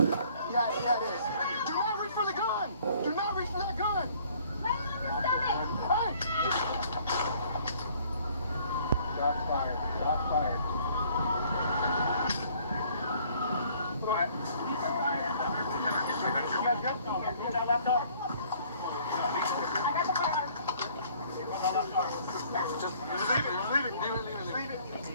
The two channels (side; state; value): both; inverted; correlation -0.58